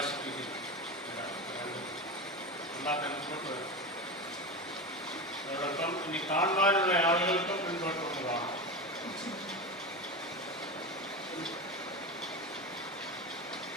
അതോടൊപ്പം ഇനി കാണുവാനുള്ള ആളുകൾക്കും മുൻപോട്ട് കൊണ്ടുപോകാം.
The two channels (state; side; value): normal; both; correlation 0.22